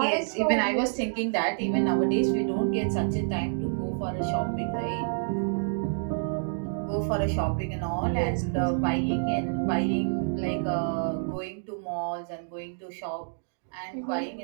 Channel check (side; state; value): left; silent; digital silence